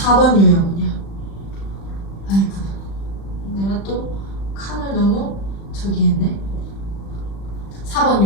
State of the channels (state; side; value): late; right; 35 ms